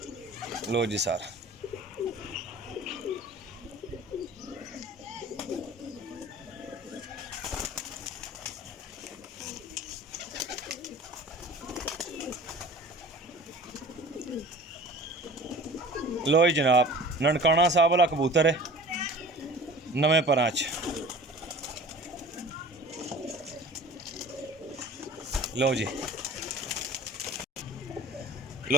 लो जी सर, लो जी जनाब, ननकाना साहब वाला कबूतर है, नवे परां च। लो जी,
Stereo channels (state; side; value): normal; both; correlation 0.42